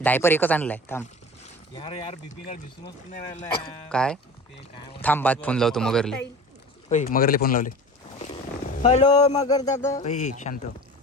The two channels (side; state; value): both; normal; correlation 0.36